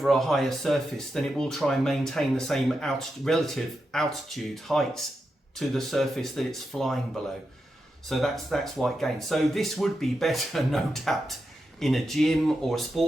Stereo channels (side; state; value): both; normal; correlation 0.87